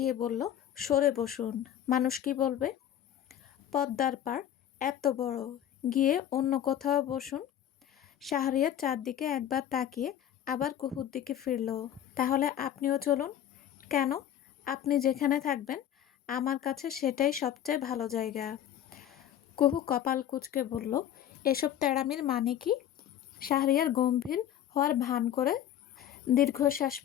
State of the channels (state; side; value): quieter; right; 10.7 dB